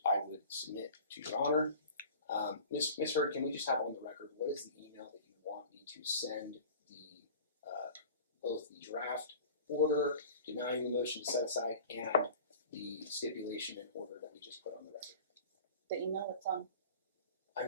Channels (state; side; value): inverted; both; correlation -0.42